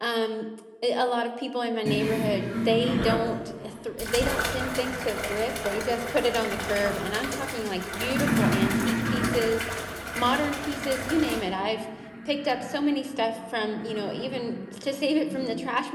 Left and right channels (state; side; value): identical; both; correlation 1.00